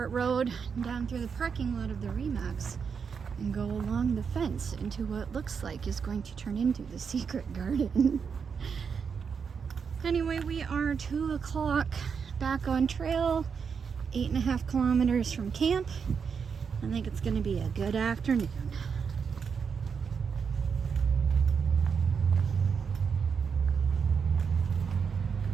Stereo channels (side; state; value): left; quieter; 6.2 dB